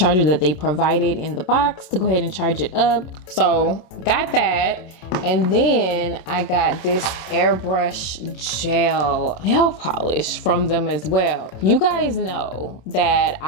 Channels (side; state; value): right; late; 27 ms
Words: that they provided in the box to go ahead and charge it up. So got that. And then I got this airbrush gel nail polish from them as well. You guys know that